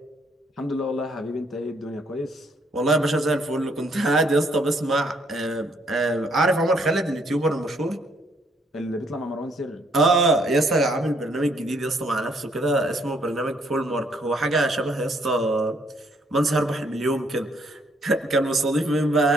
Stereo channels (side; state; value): both; normal; correlation 0.68